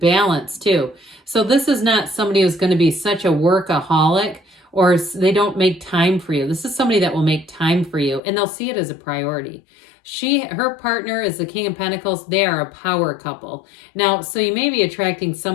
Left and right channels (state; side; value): drops out; right; at 8.2 s